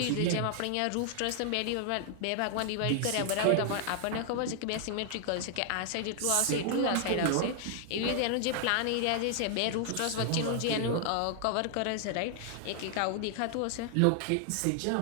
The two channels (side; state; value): both; different; correlation 0.00